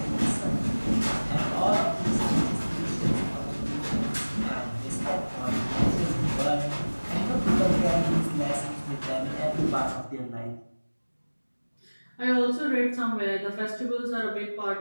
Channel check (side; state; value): both; inverted; correlation -1.00